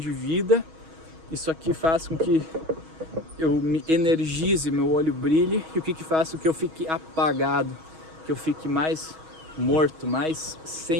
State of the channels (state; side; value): late; left; 6.2 ms